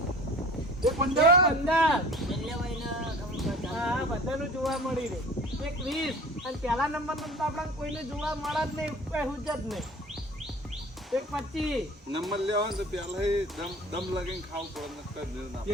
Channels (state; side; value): normal; both; correlation 0.43